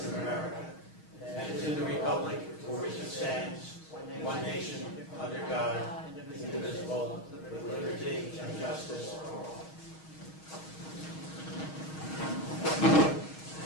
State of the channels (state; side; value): late; right; 6.3 ms